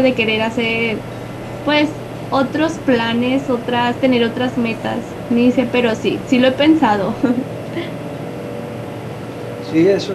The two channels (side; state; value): both; identical; correlation 1.00